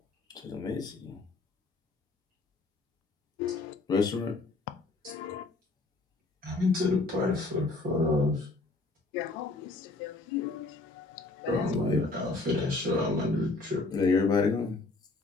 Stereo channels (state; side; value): quieter; right; 3.4 dB